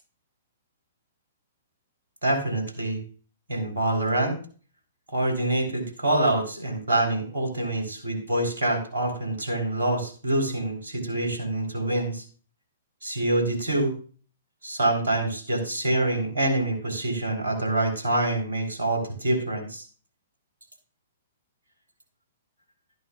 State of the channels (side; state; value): both; inverted; correlation -0.67